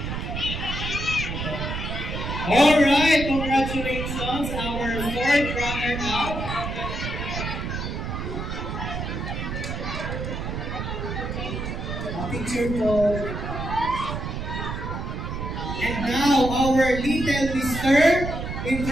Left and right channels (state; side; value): noise; right; rumble, 4 dB below the sound